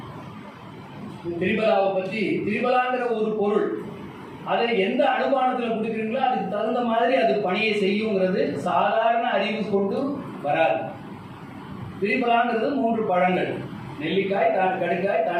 திரிபலாவை பற்றி, திரிபலாங்கிற ஒரு பொருள், அதை எந்த அனுமானத்தில் கொடுக்குறீங்களோ அதுக்கு தகுந்த மாதிரி அது பணியை செய்யுங்கிறது சாதாரண அறிவு கொண்டு வராது. திரிபலாங்கிறது 3 பழங்கள், நெல்லிக்காய், கடுக்காய்,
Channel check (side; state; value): both; identical; correlation 1.00